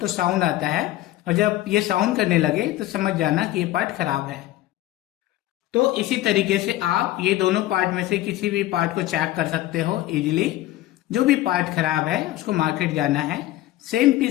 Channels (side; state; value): right; quieter; 15.4 dB